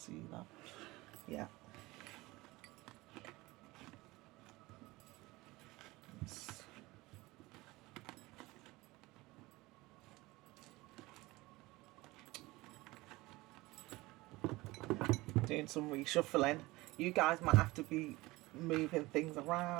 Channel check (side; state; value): left; quieter; 20.7 dB